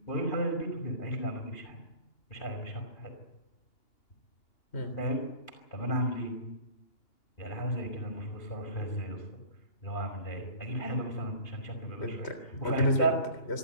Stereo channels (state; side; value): late; right; 2.8 ms